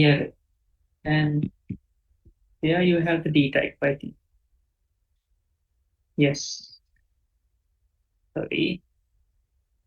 And here you have the d type, I think. Yes, sorry,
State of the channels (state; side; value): identical; both; correlation 1.00